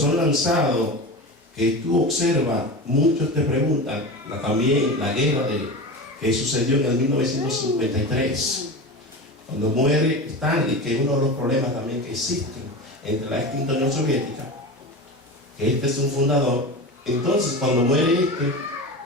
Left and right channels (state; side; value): normal; both; correlation 0.27